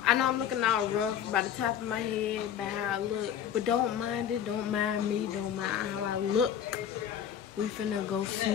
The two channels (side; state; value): right; quieter; 9.3 dB